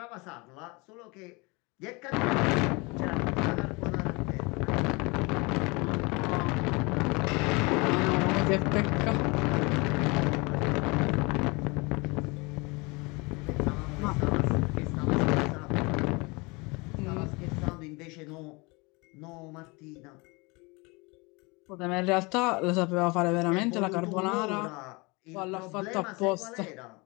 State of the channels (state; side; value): quieter; right; 27.0 dB